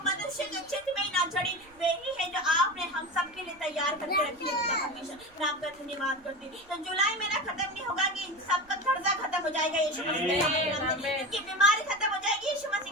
मनुष्य के चित्त में ही ना चढ़ी, वही है जो आपने हम सब के लिए तैयार करके रखी है परमेश्वर। मैं आपका धन्यवाद करती हूँ। तो जुलाई महीना खत्म नहीं होगा कि सबका कर्जा खत्म हो जाएगा यीशु मसीह के सामर्थ्य नाम से, इनकी बीमारी खत्म हो जाएगी यीशु मसीह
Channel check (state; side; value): noise; right; rumble, 28 dB below the sound